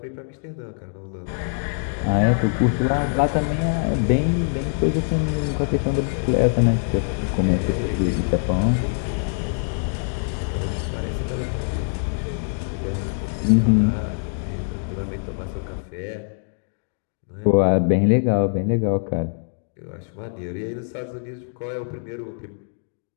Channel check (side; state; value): right; silent; 63 dB below the other